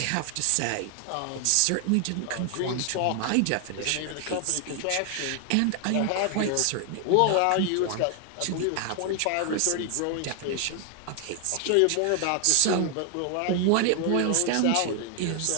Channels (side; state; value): both; different; correlation 0.00